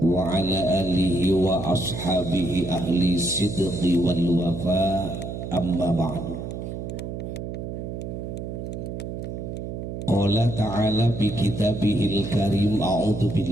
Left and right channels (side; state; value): right; noise; hum, 6 dB below the sound